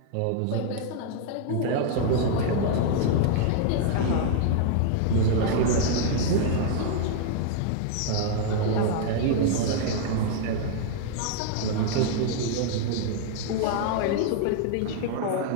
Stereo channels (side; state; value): both; different; correlation 0.00